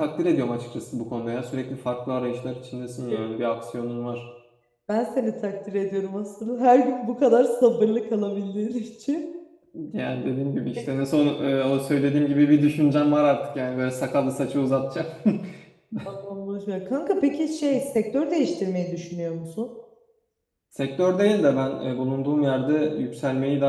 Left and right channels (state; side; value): identical; both; correlation 1.00